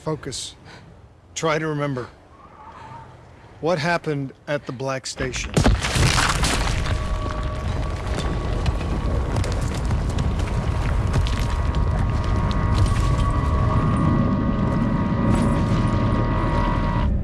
Try to remember. What happened at the Black Station?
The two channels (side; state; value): both; identical; correlation 1.00